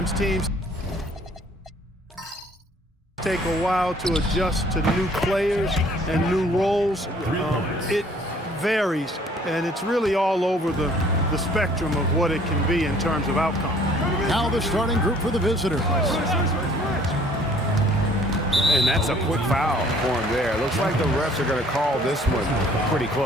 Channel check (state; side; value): normal; both; correlation 0.57